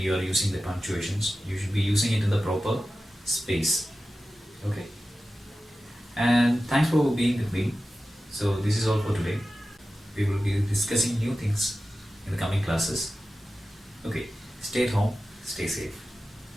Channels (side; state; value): both; normal; correlation 0.94